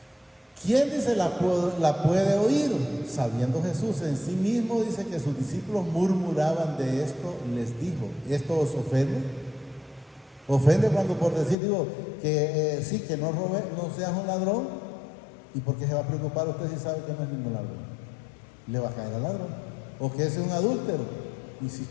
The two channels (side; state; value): right; drops out; at 11.6 s